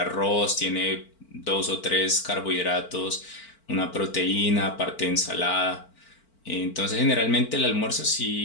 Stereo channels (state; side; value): late; right; 4.5 ms